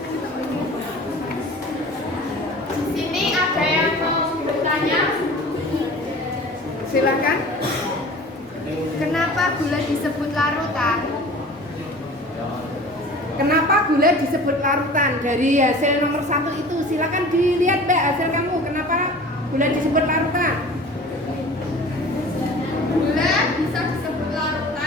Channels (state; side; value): normal; both; correlation 0.42